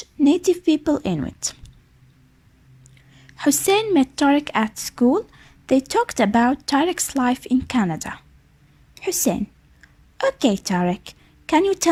native people Inuit. Hussein met Tarek at school. They talked about Tarek's life in Canada. Hussein: Okay, Tarek, can you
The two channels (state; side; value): identical; both; correlation 1.00